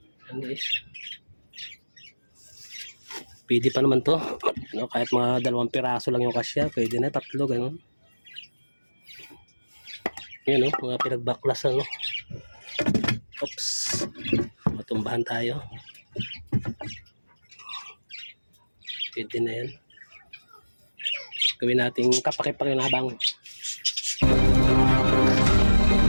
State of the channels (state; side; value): inverted; both; correlation -1.00